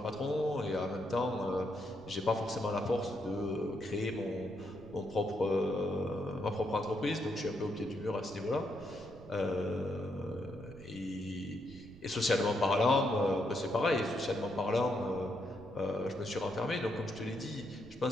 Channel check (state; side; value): noise; right; rumble, 19 dB below the sound